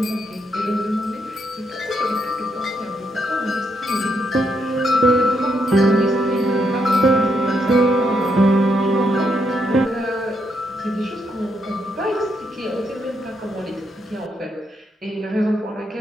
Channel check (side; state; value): both; normal; correlation 0.78